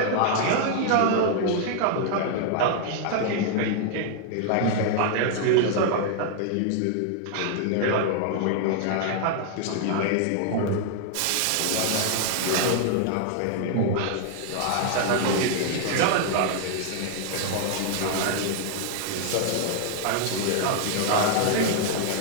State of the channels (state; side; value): different; both; correlation 0.00